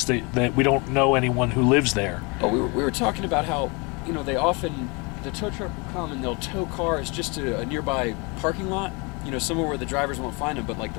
that we don't know anyone who lives there. Oh, we were talking about how, you know, the tow truck will come and they'll tow cars just to a nearby parking lot, you know, somewhere where the drivers won't find them, but like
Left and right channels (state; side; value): quieter; right; 29.6 dB